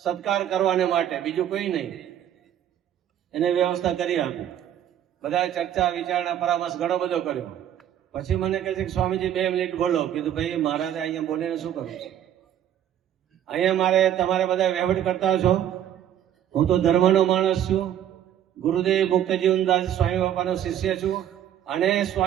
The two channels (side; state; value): left; quieter; 10.7 dB